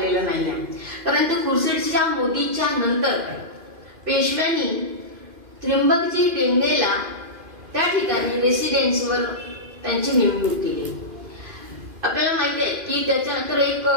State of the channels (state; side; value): late; left; 2.5 ms